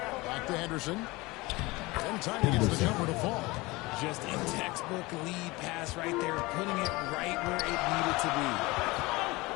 Back to Henderson. And time he gets the jumper to fall. Just a textbook lead pass right there, putting it right where it needed to be.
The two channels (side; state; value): right; quieter; 22.4 dB